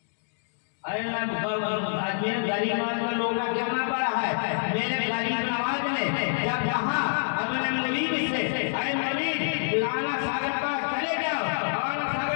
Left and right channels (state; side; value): silent; right; digital silence